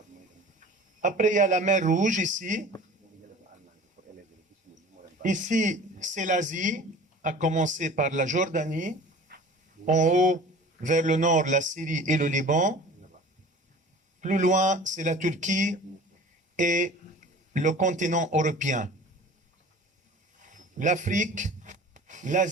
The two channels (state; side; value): normal; both; correlation 0.42